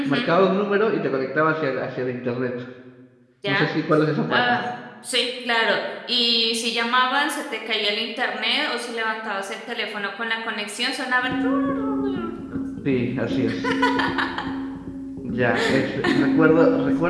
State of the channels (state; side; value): identical; both; correlation 1.00